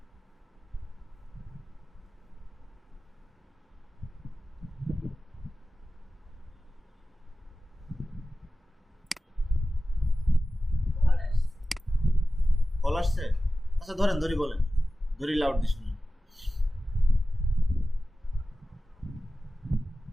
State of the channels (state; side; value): normal; both; correlation 0.95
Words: কল আসছে, আচ্ছা ধরেন, ধরি বলেন, ধরি লাউড দিয়ে শুনুন।